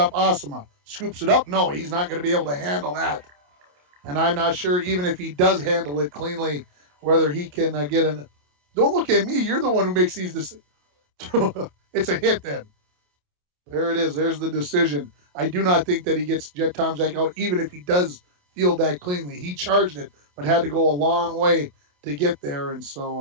Asama. Scoops it up. No, he's not going to be able to handle that. And I'm not sure, even if he does handle it cleanly, whether he can get an... Don't look at me. You're the one who makes these decisions. It's a hit then. There it is. There's the decision. I do not think that he gets Jet Tomczak out, even if he does field that cleanly. He charged it, but had to go a long way to get there. And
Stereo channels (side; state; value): left; late; 28 ms